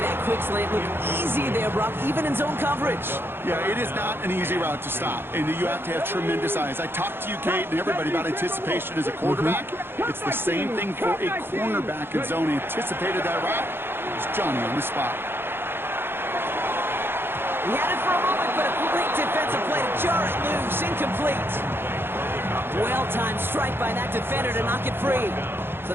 quick slant. Look easy there, Brock, even in zone coverage. Yeah, it is not an easy route to stop, and you have to have tremendous eyes. I talked to you, Kate, and everybody about anticipation as a quarterback. It's the same thing for a cornerback in zone. He anticipated that route. It's Johnny on the spot. He had it for a moment, but a complete defensive play to jar it loose. Incomplete. Well-timed strike by that defender to knock it free. So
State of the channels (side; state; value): left; late; 0.11 ms